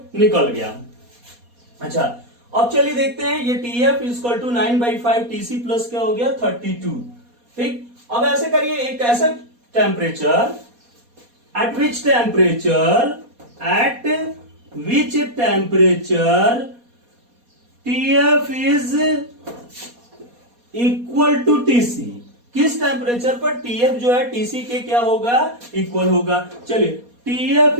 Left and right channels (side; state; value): left; late; 4.2 ms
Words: निकल गया। अच्छा अब चलिए देखते हैं, ये T F equal to 9/5 T C plus क्या हो गया 32, ठीक। अब ऐसे करिए, एक ऐसा temperature, at which temperature TF is equal to TC, किस टेम्परेचर पर TF जो है TC के क्या होगा, इक्वल होगा। चलिए TF